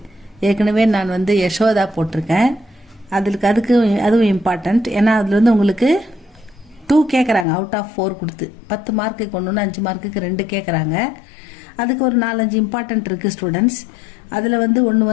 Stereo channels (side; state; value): right; drops out; at 7.5 s